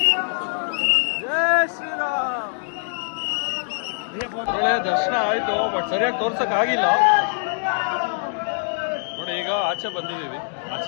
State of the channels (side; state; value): right; silent; digital silence